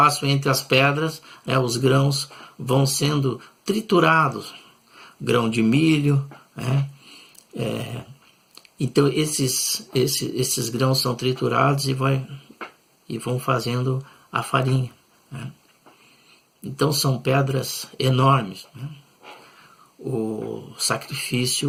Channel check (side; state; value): both; identical; correlation 1.00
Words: entre as pedras, os grãos vão sendo triturados, grão de milho, né? Então esses grãos são triturados e vão fazendo a farinha, né? Então são pedras enormes, né? O